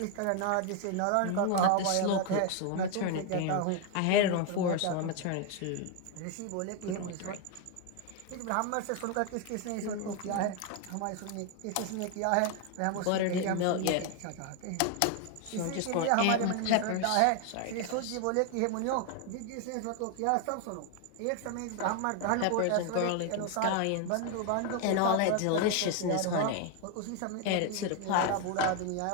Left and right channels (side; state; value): both; different; correlation 0.01